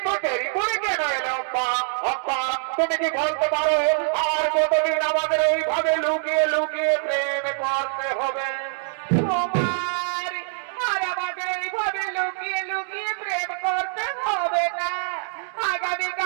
দেরি করে কেন এলে অম্বা? অম্বা, তুমি কি বলতে পারো আর কতদিন আমাদের এইভাবে লুকিয়ে লুকিয়ে প্রেম করতে হবে? কুমার, আর আমাকে এইভাবে লুকিয়ে লুকিয়ে প্রেম করতে হবে না।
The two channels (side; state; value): left; silent; digital silence